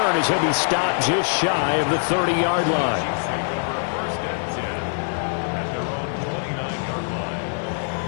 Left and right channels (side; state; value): right; silent; digital silence